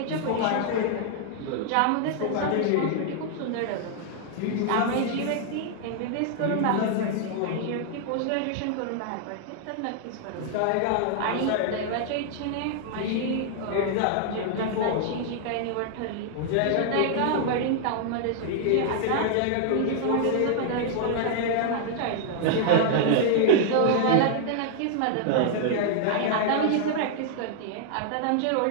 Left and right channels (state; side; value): different; both; correlation 0.00